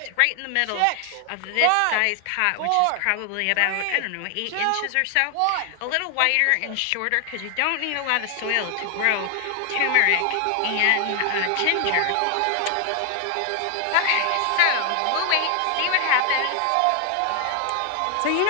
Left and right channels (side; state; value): both; different; correlation 0.00